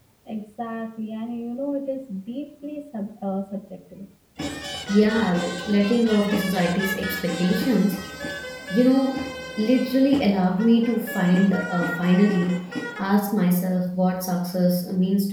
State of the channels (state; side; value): identical; both; correlation 1.00